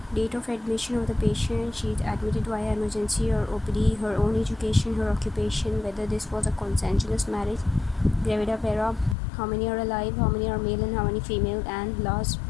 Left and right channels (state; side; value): drops out; right; at 9.2 s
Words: date of admission of the patient, she is admitted via emergency or OPD, her own education, her occupation, whether this was a consensuous marriage, gravida para, how many are alive, how many are male and how many female, and last